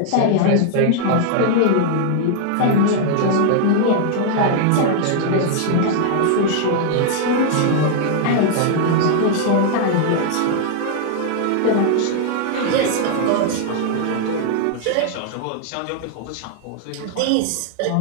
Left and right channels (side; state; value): both; different; correlation 0.00